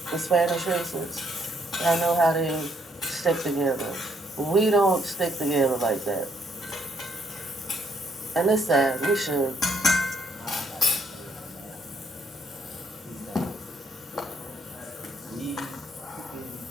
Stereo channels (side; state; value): both; normal; correlation 0.71